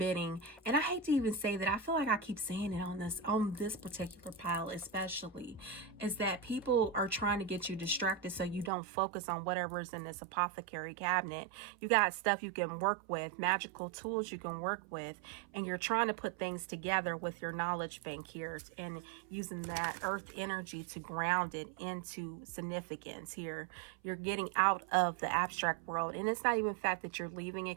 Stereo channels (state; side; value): drops out; left; at 8.7 s